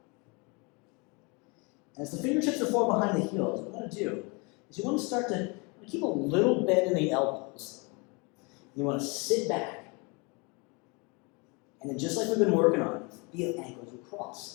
And as the fingertips are forward behind the heels, what you want to do is you want to start to keep a little bend in the elbows. You want to sit back. And then just like we've been working on, feel ankles across.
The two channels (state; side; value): quieter; right; 30.1 dB